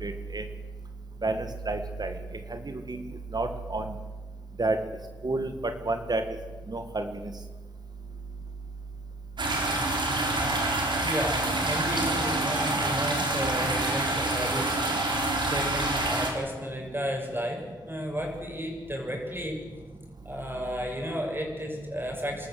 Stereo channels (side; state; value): both; normal; correlation 0.50